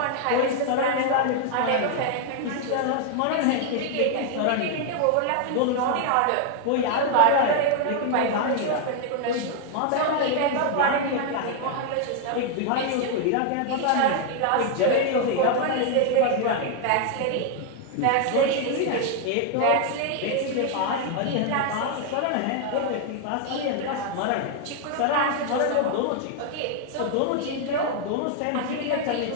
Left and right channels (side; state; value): both; different; correlation 0.00